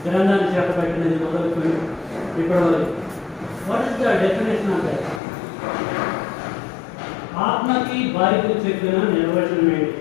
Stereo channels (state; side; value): drops out; right; at 5.2 s